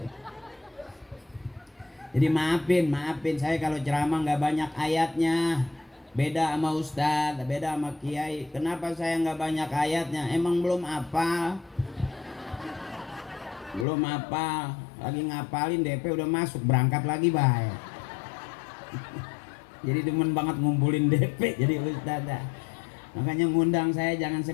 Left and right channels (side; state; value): right; drops out; at 13.9 s